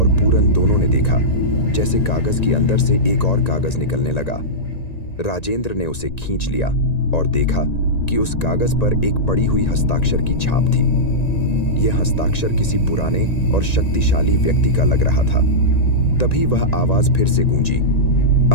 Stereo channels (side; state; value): right; late; 1.9 ms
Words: पूरन दोनों ने देखा जैसे कागज के अंदर से एक और कागज निकलने लगा। राजेंद्र ने उसे खींच लिया और देखा कि उस कागज पर एक पड़ी हुई हस्ताक्षर की छाप थी। यह हस्ताक्षर किसी पुराने और शक्तिशाली व्यक्ति का लग रहा था। तभी वह आवाज फिर से गूंजी,